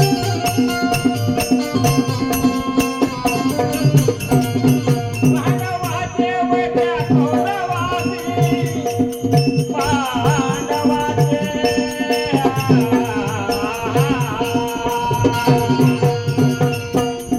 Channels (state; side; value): identical; both; correlation 1.00